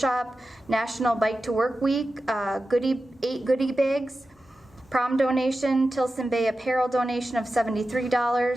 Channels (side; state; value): both; normal; correlation 0.93